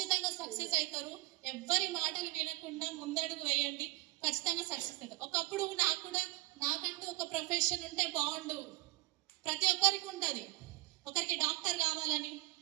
సక్సెస్ అవుతారు. ఎవ్వరి మాటలు వినకుండా ముందడుగు వేయండి, ఖచ్చితంగా సక్సెస్ అవుతారు. ఒకప్పుడు నాకంటూ ఒక ప్రొఫెషన్ ఉంటే బాగుండు, ప్రతి ఒక్కరికి ఉంటుంది. ఒకరికి డాక్టర్ కావాలని,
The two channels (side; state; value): left; quieter; 21.7 dB